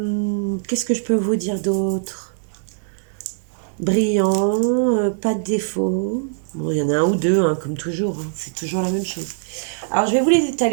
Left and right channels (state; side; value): silent; left; digital silence